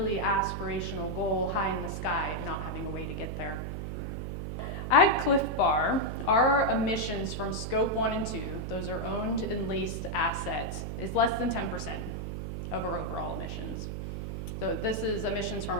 aspirational goal high in the sky and not having a way to get there. At Clif Bar, our emissions from scope 1 and 2, those are owned and leased assets, is less than 10% of our overall emissions. So this is emissions from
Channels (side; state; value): right; noise; hum, 4 dB below the sound